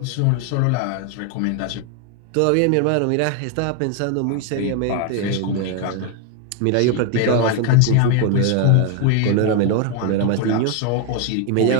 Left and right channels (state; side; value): different; both; correlation 0.01